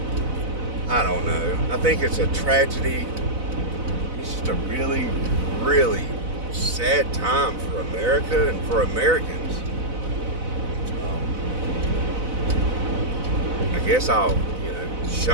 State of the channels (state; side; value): late; left; 4.0 ms